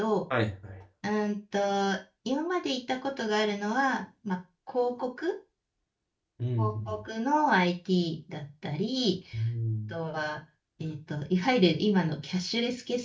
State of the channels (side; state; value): both; identical; correlation 1.00